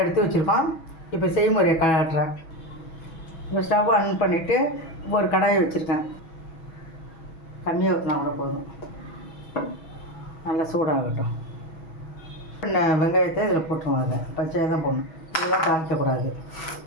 எடுத்து வச்சுருக்கோம். இப்போ செய்முறையை காட்டுறேன். இப்போ ஸ்டவ் ஆன் பண்ணிவிட்டு ஒரு கடாயை வச்சுருக்கேன். கம்மியாக ஊற்றினா கூட போதும். நல்லா சூடாகட்டும். வெங்காயத்தை இதில் போட்டுருவாங்க. பச்சையாக தான் போடணும். இதெல்லாம் தாளிக்கக்கூடாது.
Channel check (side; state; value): right; late; 6.2 ms